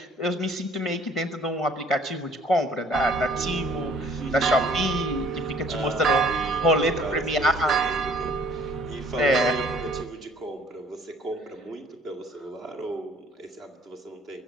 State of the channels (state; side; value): normal; both; correlation 0.56